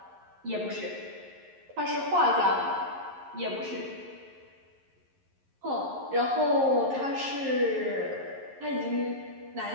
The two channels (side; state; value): left; late; 11 ms